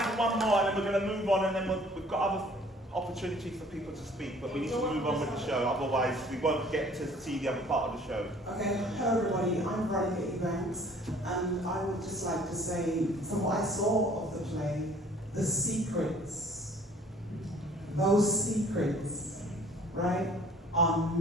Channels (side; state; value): both; normal; correlation 0.54